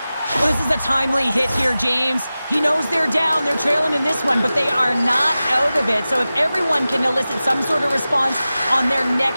Well, this is a timely hit here, James. He knows they're down, they're trailing in this one, but they are not out of it. So if everyone can elicit some sort of response on their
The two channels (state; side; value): inverted; both; correlation -0.95